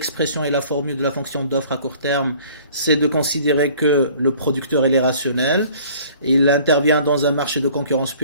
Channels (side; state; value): both; inverted; correlation -0.52